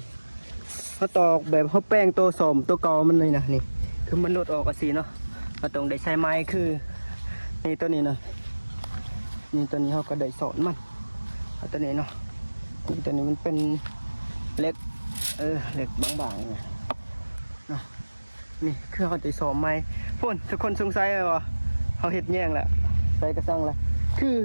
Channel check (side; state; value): both; inverted; correlation -1.00